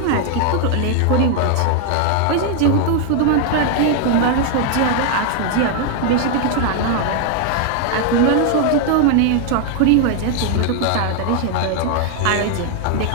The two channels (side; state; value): both; different; correlation 0.00